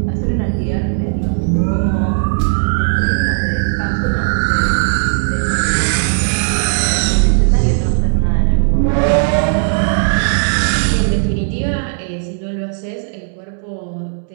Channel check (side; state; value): left; silent; 69 dB below the other